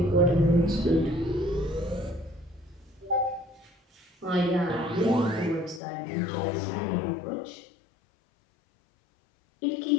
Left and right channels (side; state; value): right; drops out; at 5.8 s